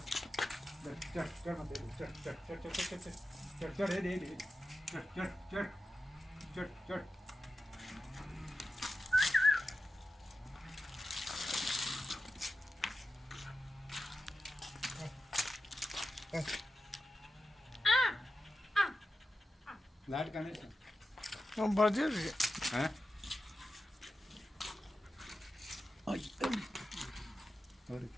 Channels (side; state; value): both; normal; correlation 0.92